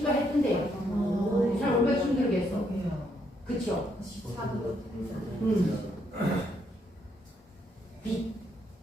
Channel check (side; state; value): both; normal; correlation 0.74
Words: 했던데요. 잘 얼마나 힘들겠어. 그쵸? 빛.